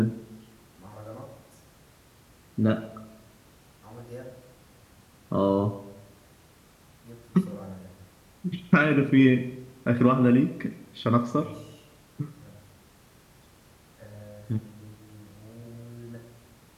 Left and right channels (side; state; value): both; identical; correlation 1.00